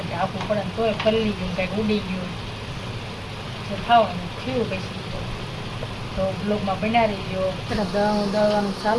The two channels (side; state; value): both; identical; correlation 1.00